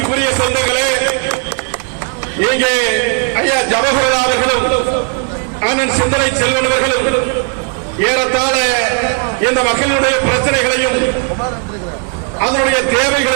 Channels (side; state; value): left; quieter; 36.5 dB